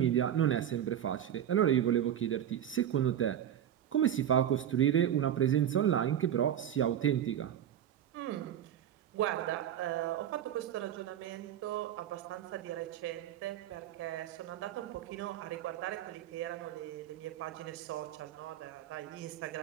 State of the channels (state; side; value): quieter; left; 10.5 dB